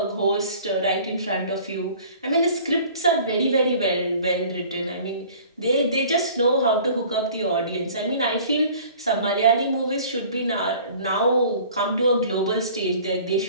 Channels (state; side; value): inverted; both; correlation -0.48